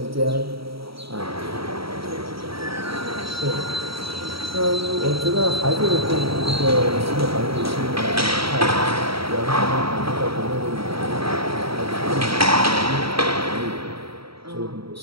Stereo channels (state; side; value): late; left; 0.75 ms